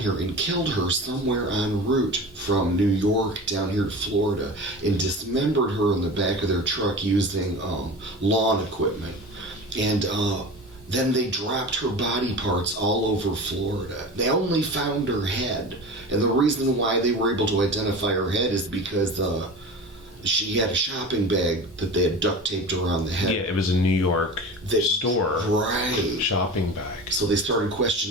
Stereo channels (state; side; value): normal; both; correlation 0.33